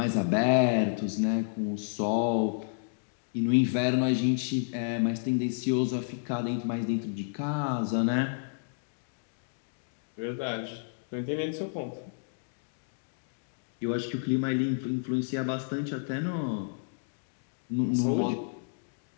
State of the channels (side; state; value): right; silent; digital silence